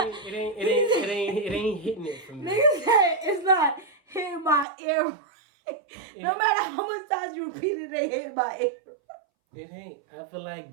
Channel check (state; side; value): drops out; left; at 4.7 s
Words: ain't hitting it for me. Nigga said it's not hitting my ear. No matter how much times you repeat it, they hit my ear. It ain't. I feel